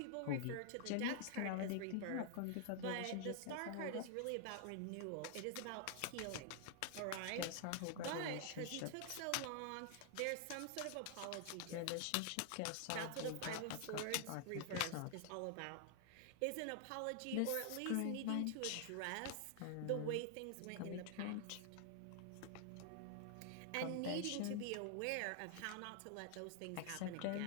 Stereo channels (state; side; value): different; both; correlation 0.00